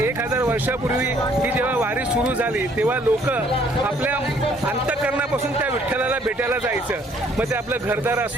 1000 वर्षापूर्वी ही जेव्हा वारी सुरू झाली तेव्हा लोक आपल्या अंतःकरणापासून त्या विठ्ठलाला भेटायला जायचं. मग ते आपलं घरदार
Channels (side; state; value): both; normal; correlation 0.62